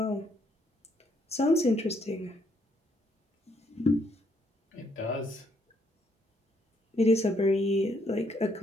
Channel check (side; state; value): both; normal; correlation 0.71